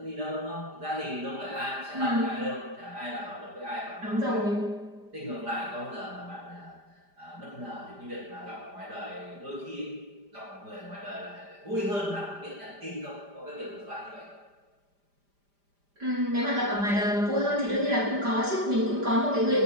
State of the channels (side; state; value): left; late; 5.0 ms